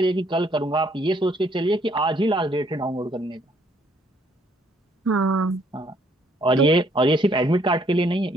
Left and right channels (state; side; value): normal; both; correlation 0.66